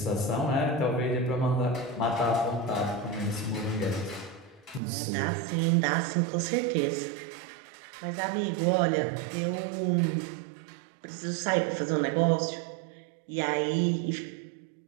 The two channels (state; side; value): drops out; left; at 4.8 s